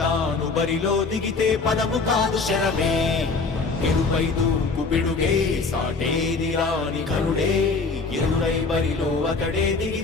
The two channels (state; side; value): quieter; right; 4.2 dB